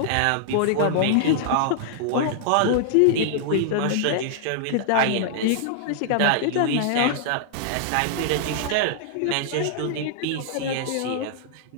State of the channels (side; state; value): both; different; correlation -0.01